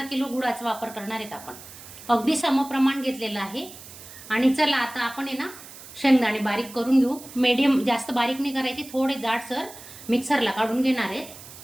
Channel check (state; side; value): noise; right; hiss, 16 dB below the sound